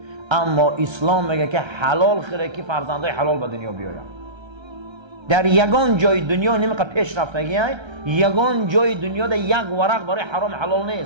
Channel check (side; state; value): left; late; 1.3 ms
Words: اما اسلام میگه که حلال خیره که فرزندای حلال به دنیا بیاید. در یگان جای دنیا نمیقدر پیش رفتگی های، یگان جای دنیا در یک ورق برای حرام حلال